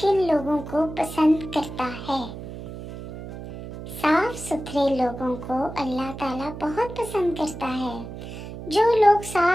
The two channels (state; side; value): noise; right; hum, 11 dB below the sound